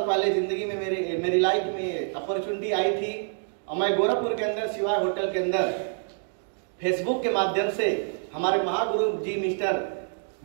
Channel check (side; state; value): left; silent; digital silence